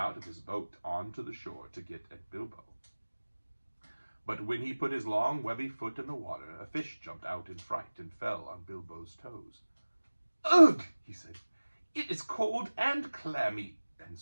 of his boat onto the shore to get at Bilbo. But when he put his long, webby foot in the water, a fish jumped out in fright and fell on Bilbo's toes. Ugh, he said. It is cold and clammy. And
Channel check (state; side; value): inverted; both; correlation -1.00